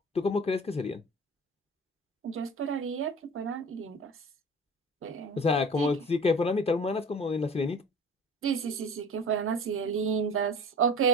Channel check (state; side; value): normal; both; correlation 0.38